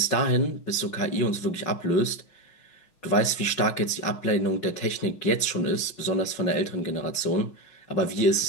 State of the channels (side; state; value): right; late; 5.5 ms